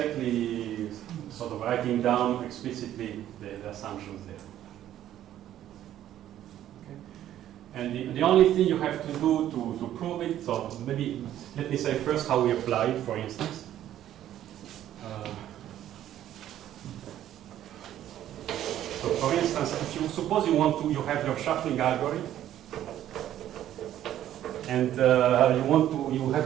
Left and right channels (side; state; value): left; quieter; 12.0 dB